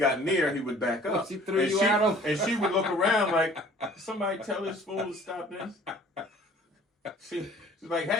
near, he would back up. She threw you at him, and she would look around like, somebody tell this fool to stop this. She's like,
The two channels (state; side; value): normal; both; correlation 0.51